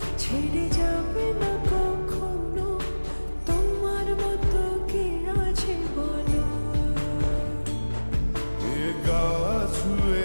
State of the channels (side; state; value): both; inverted; correlation -1.00